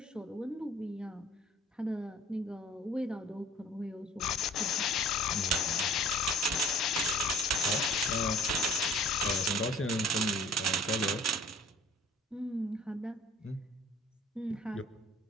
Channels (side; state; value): both; normal; correlation 0.50